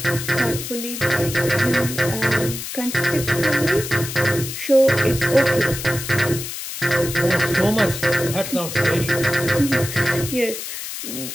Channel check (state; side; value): noise; left; hiss, 7 dB below the sound